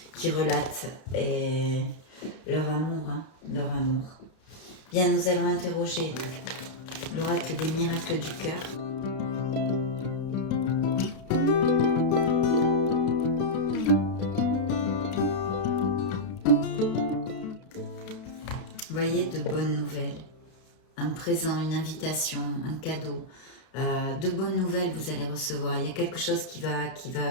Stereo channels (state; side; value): late; right; 32 ms